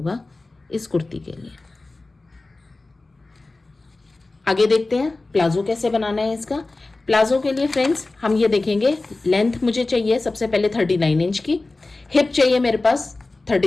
इस कुर्ती के लिए। आगे देखते हैं प्लाजो कैसे बनाना है इसका। प्लाजो के लिए फ्रेंड्स हम ये देखेंगे, लेंथ मुझे चाहिए सबसे पहले 39 इंच की, हिप चाहिए मेरे पास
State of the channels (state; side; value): quieter; right; 3.2 dB